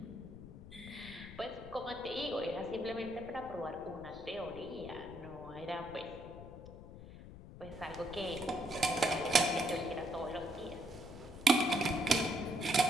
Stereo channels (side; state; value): left; noise; rumble, 14 dB below the sound